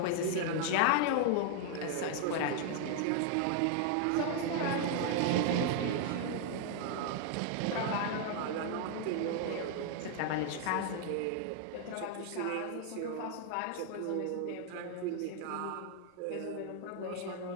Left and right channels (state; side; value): different; both; correlation 0.00